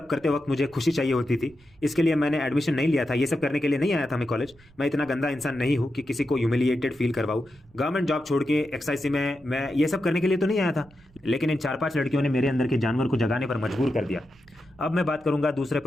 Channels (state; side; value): noise; right; rumble, 28 dB below the sound